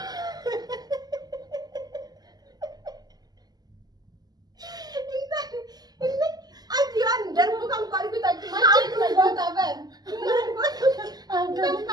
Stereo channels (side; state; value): left; late; 0.19 ms